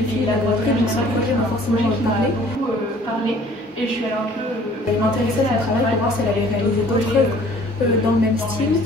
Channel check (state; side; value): normal; both; correlation 0.54